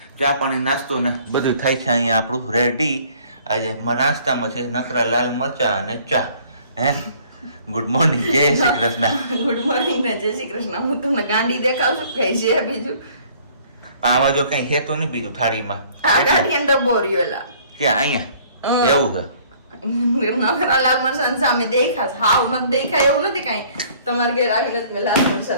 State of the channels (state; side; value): inverted; both; correlation -0.57